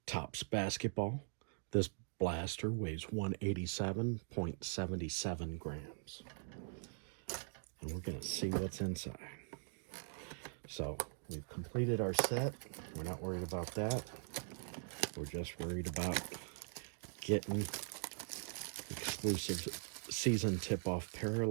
Topps basketball. This blaster weighs 187.77 grams. And we're going to see what's inside. So we've completed our set. We're not worried about that. We're just worried about getting exclusive season tip-off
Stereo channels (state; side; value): silent; left; digital silence